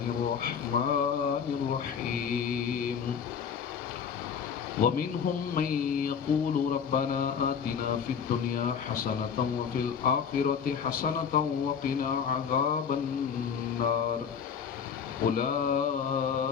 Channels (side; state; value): right; quieter; 7.1 dB